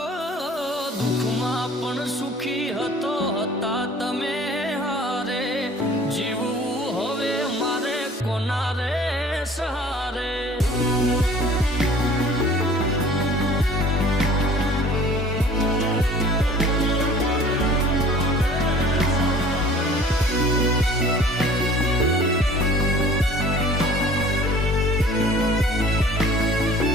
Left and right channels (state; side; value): normal; both; correlation 0.48